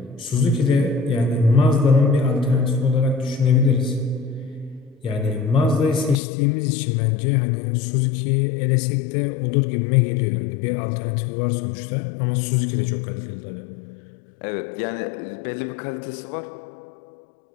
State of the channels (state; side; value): drops out; right; at 6.2 s